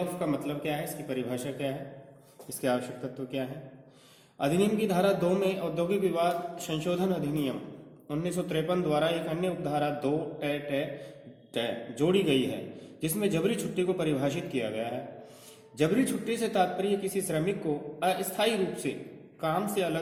का मतलब क्या है, इसकी परिभाषा क्या है, इसके आवश्यक तत्व क्या है। अधिनियम की धारा 2 में औद्योगिक विवाद संशोधन अधिनियम 1953 द्वारा एक अन्य उपधारा 2 टे जोड़ी गई है, जिसमें जबरी छुट्टी को परिभाषित किया गया है। जबरी छुट्टी से तात्पर्य किसी श्रमिक को अस्थायी रूप से काम से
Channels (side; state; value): both; identical; correlation 1.00